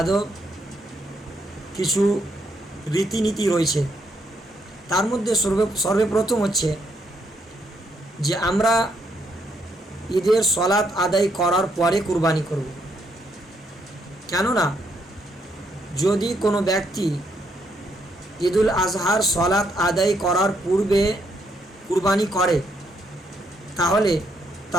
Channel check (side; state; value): both; normal; correlation 0.74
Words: কিছু রীতিনীতি রয়েছে। তার মধ্যে সর্বপ্রথম হচ্ছে যে আমরা ঈদের সলাত আদায় করার পরে কুরবানি করব। কেননা যদি কোনো ব্যক্তি ঈদুল আজহার সলাত আদায় করার পূর্বে কুরবানি করে তাহলে